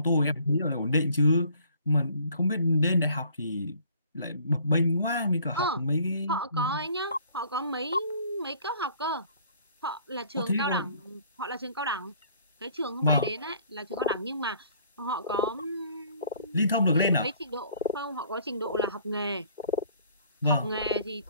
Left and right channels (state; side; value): inverted; both; correlation -0.57